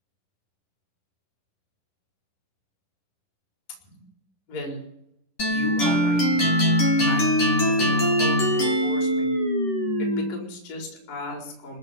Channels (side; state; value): right; late; 10 ms